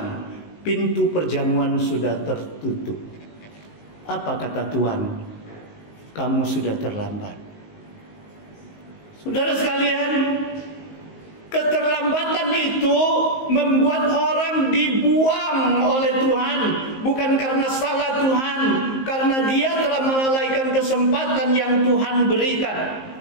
Pintu perjamuan sudah tertutup. Apa kata Tuhan? Kamu sudah terlambat. Saudara sekalian, keterlambatan itu membuat orang dibuang oleh Tuhan. Bukan karena salah Tuhan, karena dia telah melalaikan kesempatan yang Tuhan berikan.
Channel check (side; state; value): right; late; 19 ms